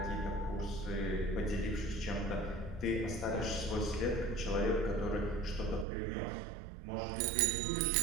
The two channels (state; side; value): drops out; left; at 5.9 s